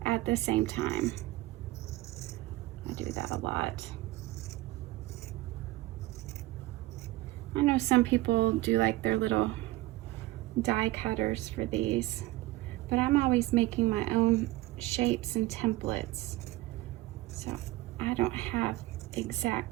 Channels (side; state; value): left; quieter; 18.4 dB